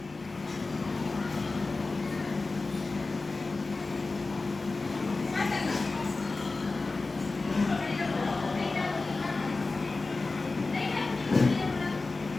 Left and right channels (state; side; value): quieter; right; 3.6 dB